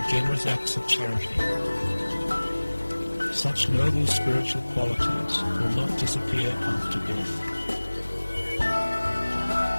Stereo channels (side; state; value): both; inverted; correlation -1.00